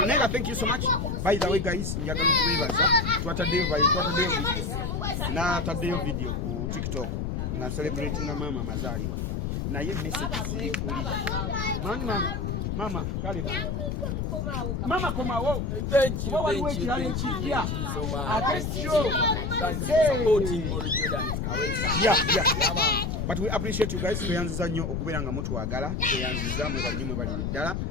thank you so much. By the way guys, njagala okubebaza twataddeyo video ku TikTok nga celebrating mama mazaliwa naye message ziri kuli mama kale bana mama komawo. Thank you so much. Thank you so much. Thanks for supporting Morris Jordan Kawesa. Yeah, man. But we appreciate you guys. Tuyanziza nnyo okubeera nga mutwagala. Tuyanziza mwe bali ddala.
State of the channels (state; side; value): noise; left; rumble, 1 dB below the sound